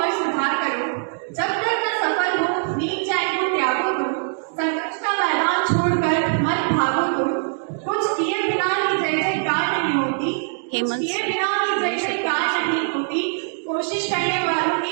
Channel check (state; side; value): silent; left; 64 dB below the other